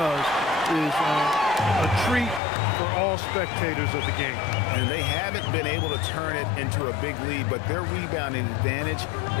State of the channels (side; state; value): right; drops out; at 2.4 s